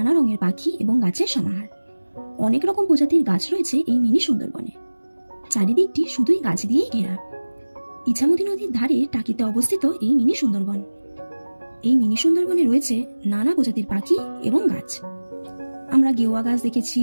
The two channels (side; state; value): both; inverted; correlation -1.00